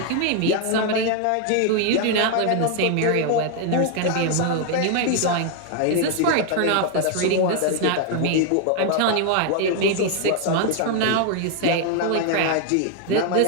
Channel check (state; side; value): different; both; correlation 0.00